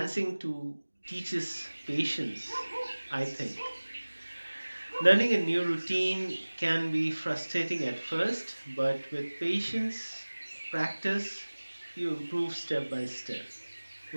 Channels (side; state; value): both; inverted; correlation -1.00